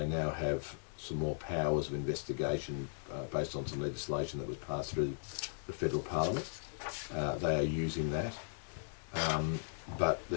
now have some more powers of investigation based on some legislation that was passed through the Federal Parliament. They are using that, but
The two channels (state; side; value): silent; right; digital silence